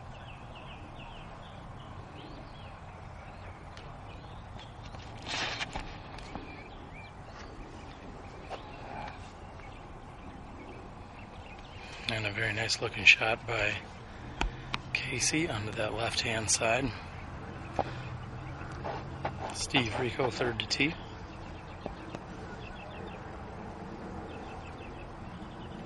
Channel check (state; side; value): identical; both; correlation 1.00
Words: And a very nice looking shot by Casey onto that left hand side. Steve Rico, third to tee.